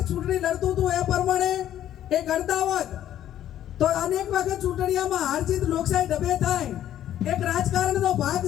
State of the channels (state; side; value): quieter; right; 11.6 dB